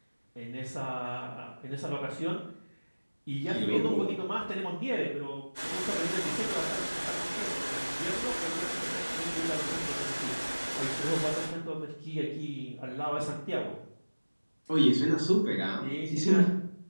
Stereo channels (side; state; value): both; inverted; correlation -1.00